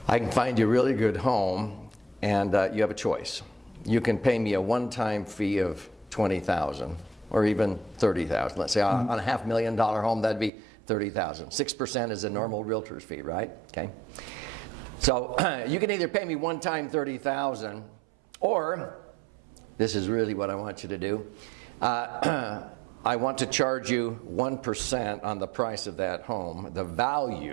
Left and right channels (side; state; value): left; drops out; at 10.5 s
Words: I can find you a really good home, and you have a choice. You can pay me a one-time fee of $20,000 or even $30,000. Let's say on a $500,000 home, that'd be $30,000. 6% is a normal realtor's fee, right? Okay. So you can either pay me one-time $30,000, or this is really what I want you to do. I want to charge you 1% on the price of that home, the